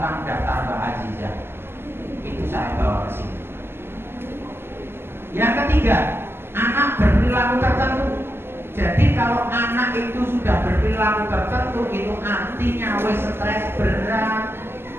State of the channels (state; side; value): late; left; 0.11 ms